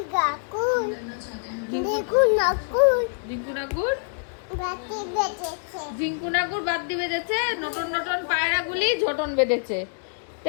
ঝিঙ্কু নাকুর বাদ্যি বেজেছে। নটন নটন পায়রাগুলি ঝোটন বেঁধেছে।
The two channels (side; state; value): right; silent; digital silence